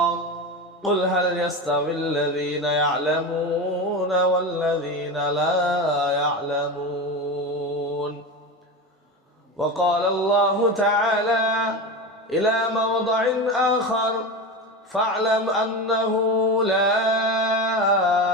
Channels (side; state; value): both; normal; correlation 0.23